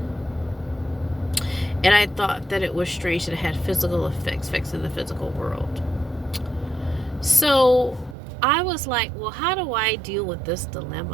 And I thought that it was strange that it had physical effects in the physical world. So I was like, well, how do I deal with this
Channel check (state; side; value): drops out; left; at 8.2 s